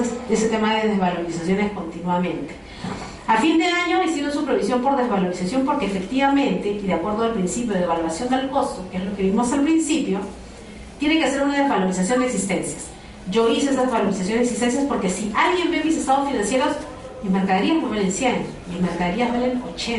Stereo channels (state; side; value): identical; both; correlation 1.00